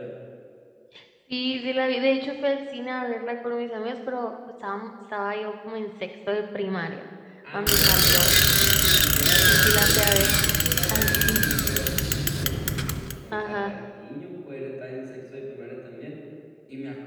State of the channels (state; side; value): identical; both; correlation 1.00